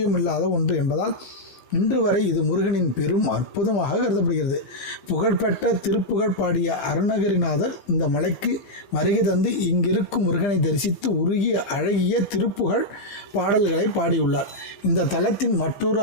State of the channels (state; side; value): late; right; 15 ms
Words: ஒன்று என்பதால் இன்று வரை இது முருகனின் பெரும் அற்புதமாக கருதப்படுகிறது. புகழ்பெற்ற திருப்புகழ் பாடிய அருணகிரிநாதர் இந்த மலைக்கு வருகை தந்து இங்கிருக்கும் முருகனை தரிசித்து உருகிய அழகிய திருப்புகழ் பாடல்களை பாடியுள்ளார். இந்த தலத்தின் மற்றொரு